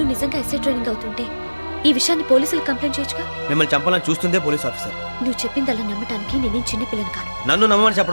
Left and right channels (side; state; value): both; inverted; correlation -1.00